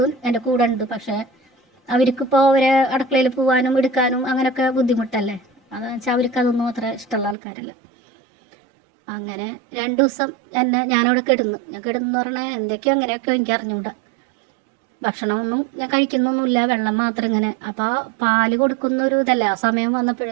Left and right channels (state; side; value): drops out; left; at 7.4 s